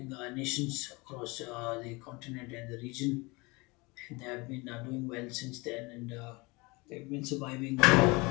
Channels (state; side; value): quieter; right; 25.7 dB